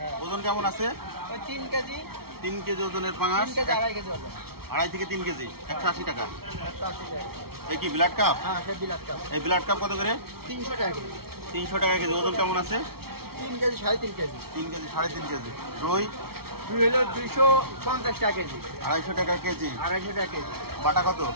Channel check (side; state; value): left; late; 0.95 ms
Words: ওজন কেমন আছে? 3 কেজি। 3 কেজি ওজনের পাঙাশ। 3 কেজি 2.5 কেজি ওজন। 2.5 থেকে 3 কেজি 180 টাকা। 180 টাকা। এই কি ব্লাড কাপ? হ্যাঁ, সে বিলাত কাপ। এই ব্লাড কাপ কত করে? 300 টাকা কেজি। 300 টাকা কেজি। ওজন কেমন আছে? 3 কেজি 3.5 কেজি। 3 KG 3.5 KG. রুই হলো 250 টাকা কেজি। 250 টাকা কেজি। 250 টাকা কেজি। বাটা কত?